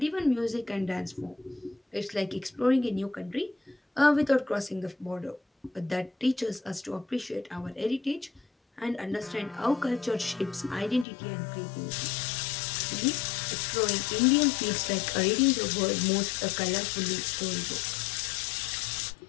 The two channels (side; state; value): right; drops out; at 11.1 s